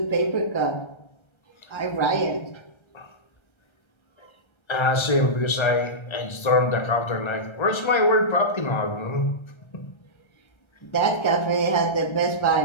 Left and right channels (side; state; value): right; late; 1.3 ms